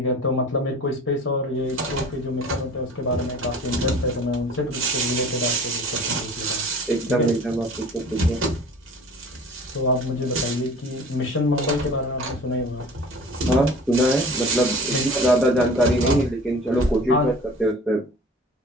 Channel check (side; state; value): both; normal; correlation 0.44